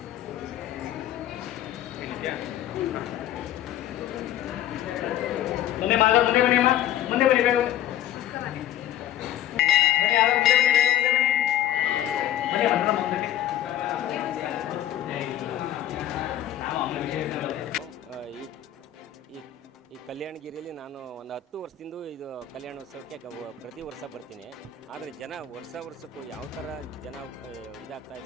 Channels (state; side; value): quieter; right; 11.5 dB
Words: ಮುಂದೆ ಮಾಧವ ಮುಂದೆ ಬನ್ನಿ ಅಮ್ಮ ಮುಂದೆ ಬನ್ನಿ ಬೇಗ ಬನ್ನಿ ಯಾರೋ ಮುಂದೆ ಬನ್ನಿ ಬನ್ನಿ ಅನ್ನ ಮುಂದೆ ಈ ಕಲ್ಯಾಣಗಿರಿಯಲ್ಲಿ ನಾನು ಒಂದು 10 ವರ್ಷದಿಂದ ಇದು ಕಲ್ಯಾಣೋತ್ಸವಕ್ಕೆ ಪ್ರತಿ ವರ್ಷ ಬರ್ತೀನಿ. ಆದರೆ ಜನ ವರ್ಷಕ್ಕೂ ಯಾವ ಥರ ಜನ ಇದಾಗ್ತಾ